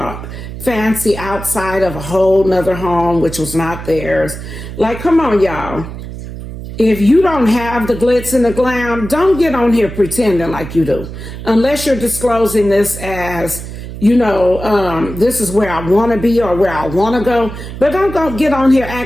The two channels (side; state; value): right; noise; hum, 10 dB below the sound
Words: fancy outside of a whole nother home, which was not theirs. Like, come on, y'all. If you don't have the glitz and the glam, don't get on here pretending like you do. Unless you're disclosing this as, this is where I want to be or where I want to go. But don't go get on here